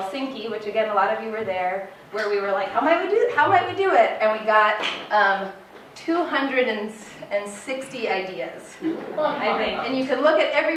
which again a lot of you were there, where we were how might we do it? And we got 260 ideas, I think. And you can look at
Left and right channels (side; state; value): both; identical; correlation 1.00